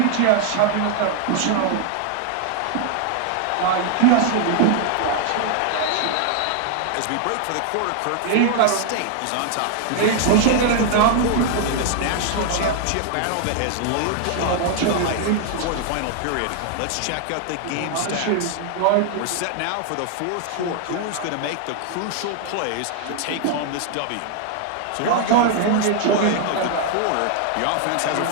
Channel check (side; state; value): both; different; correlation 0.00